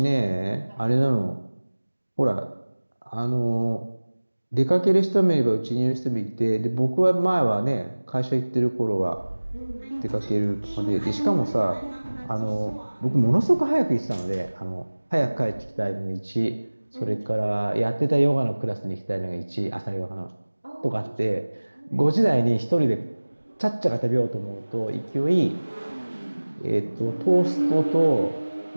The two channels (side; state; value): both; inverted; correlation -1.00